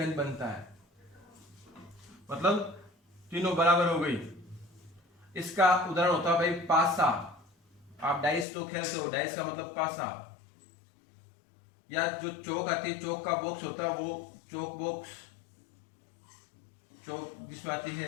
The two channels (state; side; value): drops out; right; at 8.5 s